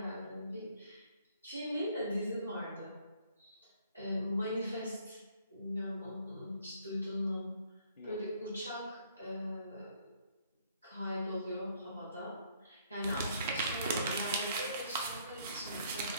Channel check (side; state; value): both; inverted; correlation -0.64